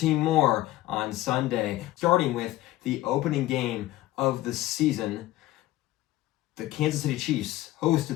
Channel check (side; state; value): right; quieter; 16.2 dB